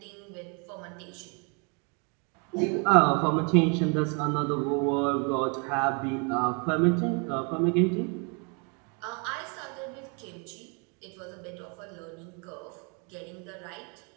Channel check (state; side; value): quieter; left; 35.5 dB